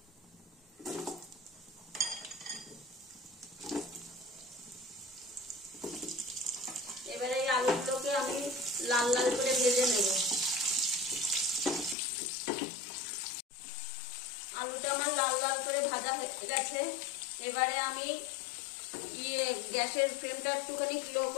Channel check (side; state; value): right; drops out; at 12.0 s